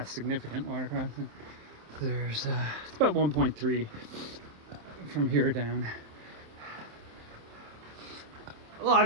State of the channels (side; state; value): left; late; 27 ms